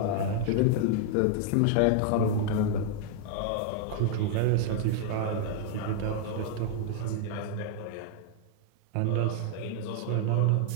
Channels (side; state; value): both; different; correlation 0.00